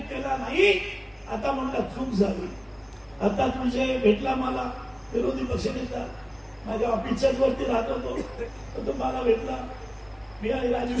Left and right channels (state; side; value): identical; both; correlation 1.00